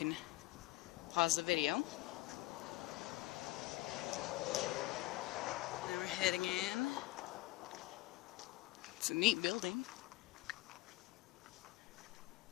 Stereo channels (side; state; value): right; quieter; 18.9 dB